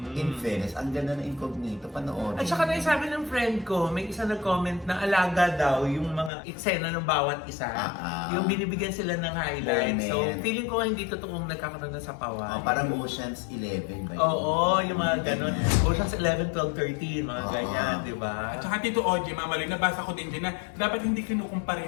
In fairness, ang ganda ng Incognito, panoorin. At saka naisabi ng friend ko, may isa nag-comment na alaga daw yung mga eksena ng bawat isa. Yung binibigyan sila ng highlights. So, Moment. feeling ko hindi totoong nagkakaroon ng sapawan. Parang Ocean's 11 ba yun? Oo, yung mga ganun. Ganyan. Ocean's 11, 12, 13, mga Oo. ganyan, di ba? At saka Tito Ogie, Mama Loy, nabasa ko din dyan na dapat hindi kinukumpara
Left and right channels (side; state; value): right; drops out; at 6.3 s